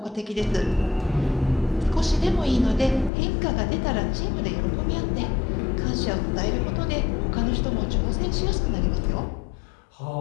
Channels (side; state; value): right; drops out; at 3.1 s